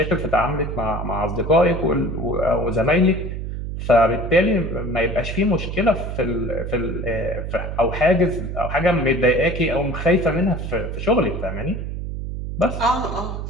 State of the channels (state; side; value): noise; right; hum, 5 dB below the sound